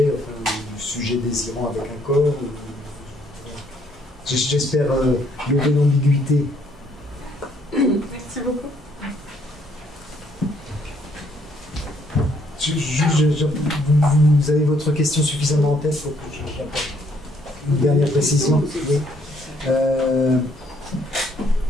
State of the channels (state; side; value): normal; both; correlation 0.67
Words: enfin, du sujet désirant avec un corps. J'espère lever l'ambiguïté. Merci beaucoup. Vous avez votre question suffisamment en tête pour que j'apporte une dernière précision. Oui.